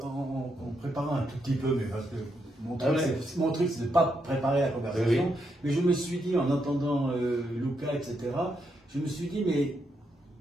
en préparant un tout petit peu, mais parce que mon truc, c'est de ne pas préparer la conversation, mais je me suis dit, en entendant Lucas, etc., je me suis dit, mais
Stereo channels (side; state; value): both; normal; correlation 0.80